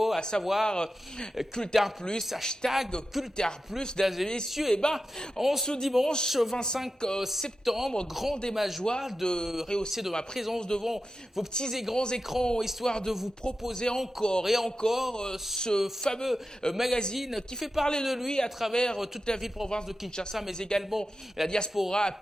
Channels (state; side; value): normal; both; correlation 0.91